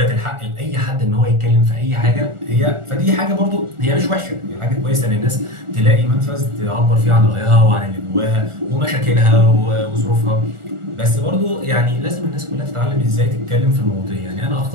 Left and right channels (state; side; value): late; left; 1.4 ms